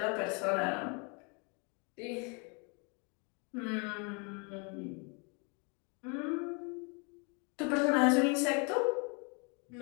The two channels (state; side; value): quieter; right; 34.3 dB